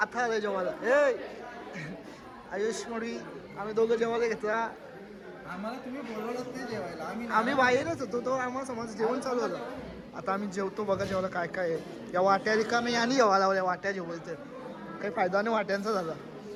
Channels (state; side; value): identical; both; correlation 1.00